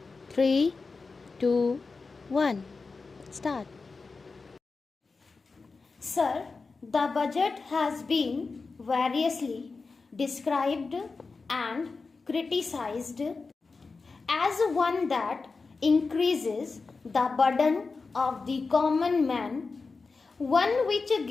3, 2, 1. Start. Sir, the budget has been variously described and criticized as one that increases the burden of the common man, one which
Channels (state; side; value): quieter; right; 4.2 dB